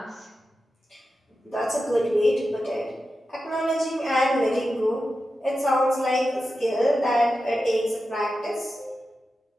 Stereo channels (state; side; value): normal; both; correlation 0.91